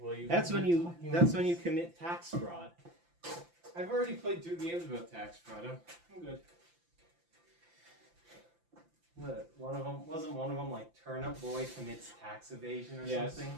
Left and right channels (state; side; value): late; left; 5.8 ms